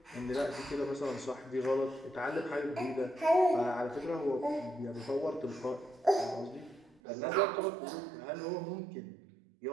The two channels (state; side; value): drops out; left; at 7.0 s